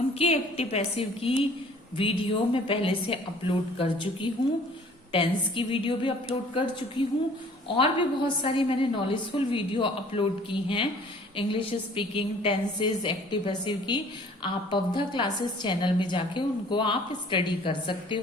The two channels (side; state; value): both; normal; correlation 0.53